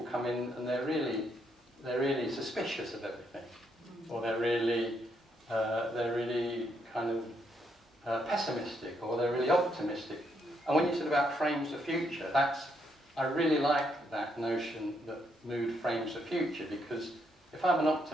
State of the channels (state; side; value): normal; both; correlation 0.76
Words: come in and they're really suspicious of everything, or they're really kind of pessimistic, or they're really optimistic. And when you said about frames the future, I really like that notion that mood frames the future, because if I'm an